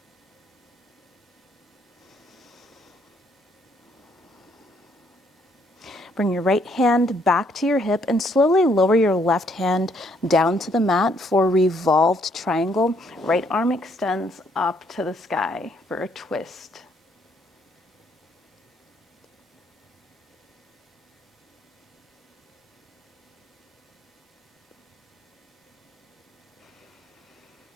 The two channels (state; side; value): normal; both; correlation 0.69